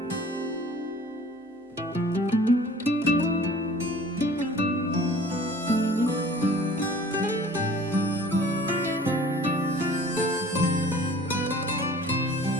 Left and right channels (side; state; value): both; normal; correlation 0.48